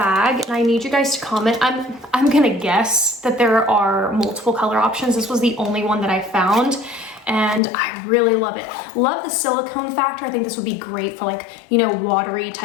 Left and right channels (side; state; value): right; drops out; at 7.6 s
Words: and I need you guys to comment. I'm gonna guess that there are multiple color options. This was the only one that I found and I really love it. Love the silicone factor. I think this would be great for like, you know, watery